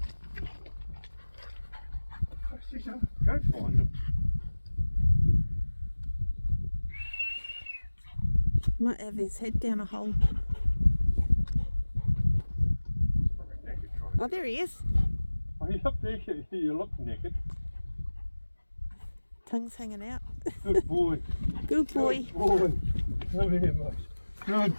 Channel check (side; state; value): both; inverted; correlation -1.00